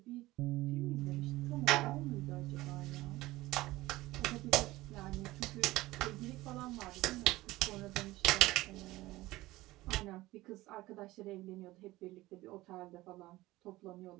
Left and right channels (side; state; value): left; quieter; 18.3 dB